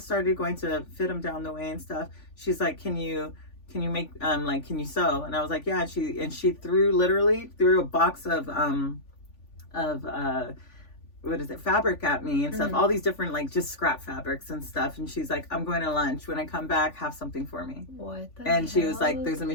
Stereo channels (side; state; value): right; late; 3.5 ms